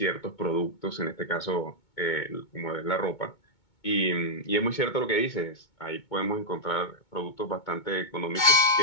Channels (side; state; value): right; late; 2.2 ms